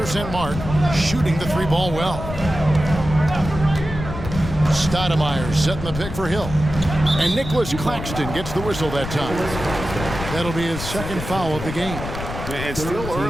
mark, shooting the 3-ball well. Stoudemire setting the pick for Hill. And Nicholas Claxton gets the whistle that time. That'll be his second foul of the game. And still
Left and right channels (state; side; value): noise; left; rumble, 8 dB below the sound